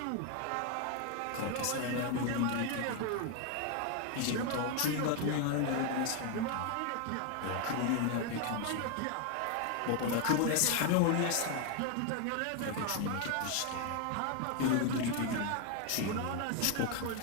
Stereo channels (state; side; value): different; both; correlation 0.01